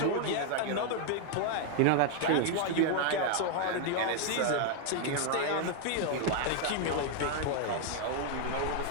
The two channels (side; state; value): both; different; correlation 0.00